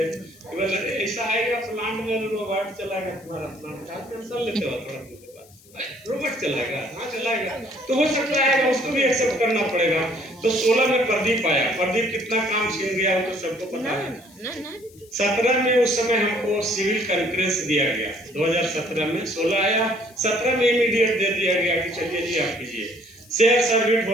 ऐसा आएगा प्लांट में रोबोट चलाएगा, तुम्हारा प्लांट का टेंशन लेते हो थोड़ा, रोबोट चलाएगा, हाँ चलाएगा, तो हो सकता है उसको भी एक्सेप्ट करना पड़ेगा। तो 16 में प्रदीप आया, प्रदीप कितना काम छीन गया वो तो सबको पता है। 17 में उस समय हमको सिविल कंकरेंस दिया गया, 2017 में 16 आया, 17 में इमीडिएट दे दिया गया कि चलिए जी आप कीजिए। शेयर सर्विट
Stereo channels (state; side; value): noise; left; hiss, 26 dB below the sound